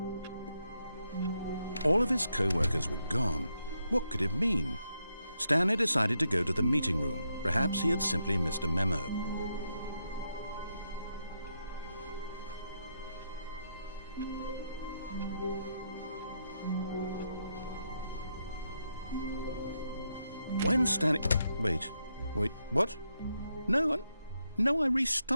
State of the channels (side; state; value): both; inverted; correlation -0.81